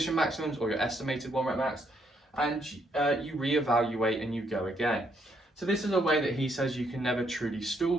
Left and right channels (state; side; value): normal; both; correlation 0.73